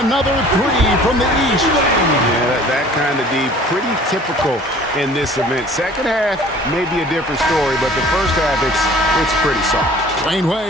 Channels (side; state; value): both; normal; correlation 0.49